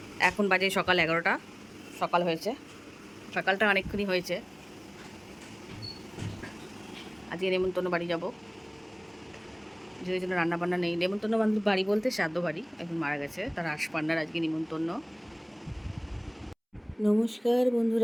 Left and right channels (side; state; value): both; identical; correlation 1.00